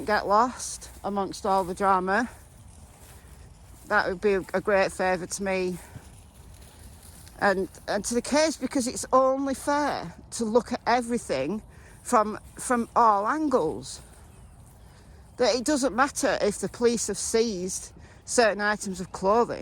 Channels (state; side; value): identical; both; correlation 1.00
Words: get lost amongst all the drama, that would be a great favour to me and to the case, because it's only fair to look at everything from all angles. That it doesn't matter if the police have seized certain items of